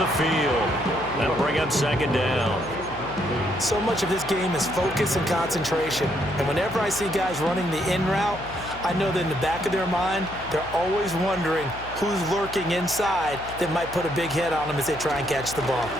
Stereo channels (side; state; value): left; noise; hum, 15 dB below the sound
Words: field. That'll bring up 2nd down. So much of this game is focus and concentration. And whenever I see guys running the in route, I know that in the back of their mind, they're always wondering who's lurking inside that might put a big hit on them as they try and catch the ball.